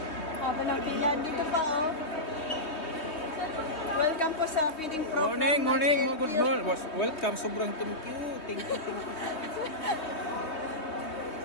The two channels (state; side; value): late; right; 3.2 ms